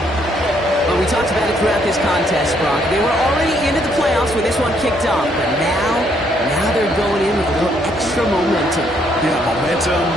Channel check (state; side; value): normal; both; correlation 0.70